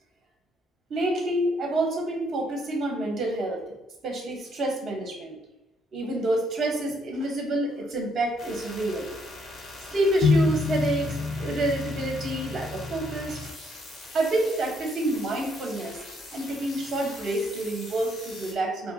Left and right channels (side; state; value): both; normal; correlation 0.71